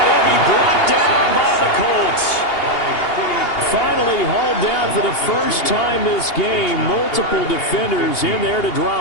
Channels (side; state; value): right; late; 2.8 ms